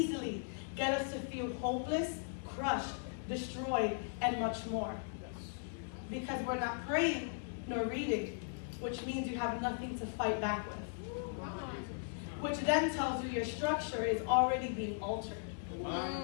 get us to feel hopeless, crushed, destroyed, and much more. Because we're not praying nor reading, which means you have nothing to fight back with. Which then tells you your structure is already being altered.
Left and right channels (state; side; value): silent; right; digital silence